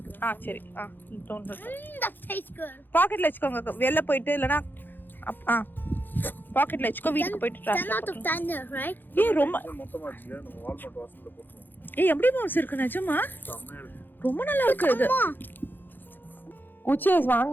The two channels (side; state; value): right; late; 0.092 ms